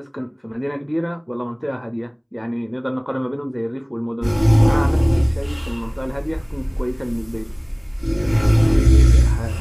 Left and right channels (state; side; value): identical; both; correlation 1.00